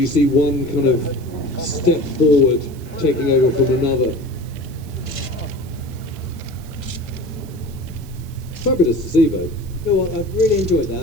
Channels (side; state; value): right; noise; hiss, 23 dB below the sound